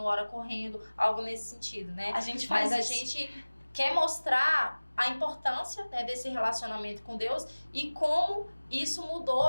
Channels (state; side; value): inverted; both; correlation -1.00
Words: ora correndo, algo nesse sentido, né? A gente faz Mas a isso. gente quer mostrar a importância, né, desse relacionamento com Deus e como isso